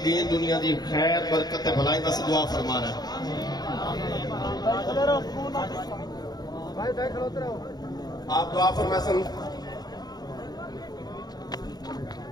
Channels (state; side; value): late; right; 0.19 ms